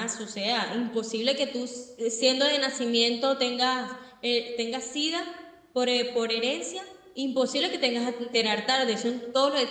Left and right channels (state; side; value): identical; both; correlation 1.00